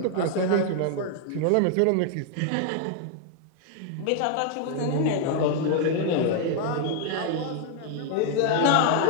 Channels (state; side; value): different; both; correlation 0.00